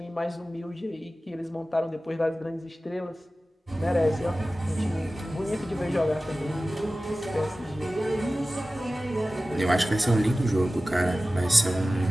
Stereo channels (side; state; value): both; normal; correlation 0.96